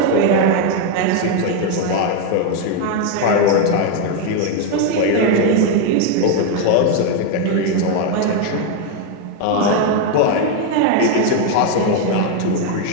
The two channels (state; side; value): different; both; correlation 0.01